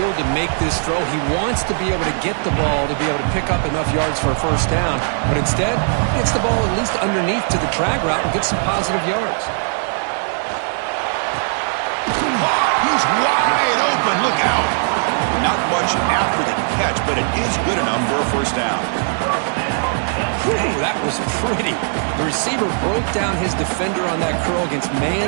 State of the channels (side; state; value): left; silent; 63 dB below the other